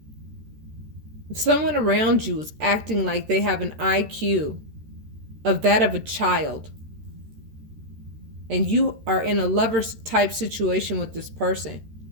If someone around you is acting like they have an IQ of that of a child, and you are in a lover's type situation with this person,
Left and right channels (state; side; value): late; left; 13 ms